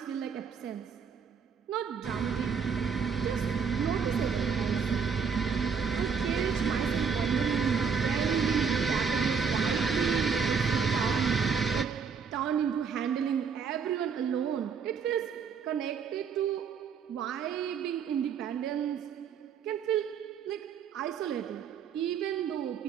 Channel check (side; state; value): left; quieter; 6.3 dB